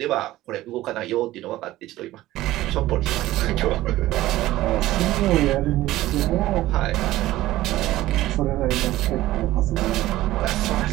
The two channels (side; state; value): left; quieter; 16.0 dB